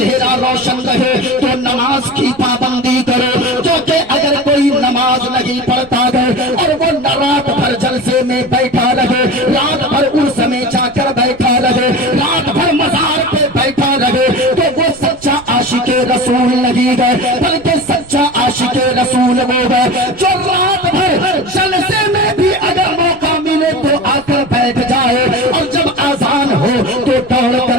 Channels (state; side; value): noise; right; rumble, 23 dB below the sound